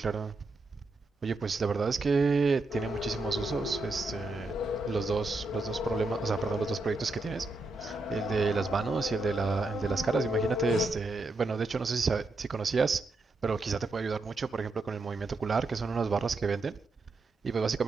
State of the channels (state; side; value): quieter; left; 3.1 dB